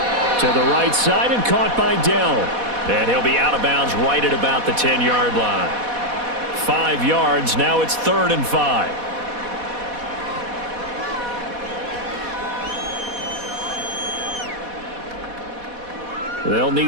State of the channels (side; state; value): left; late; 4.1 ms